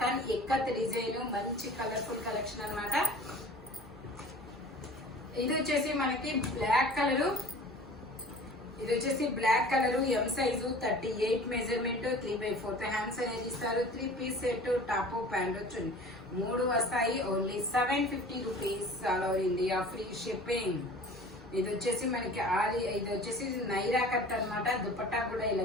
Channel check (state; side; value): normal; both; correlation 0.43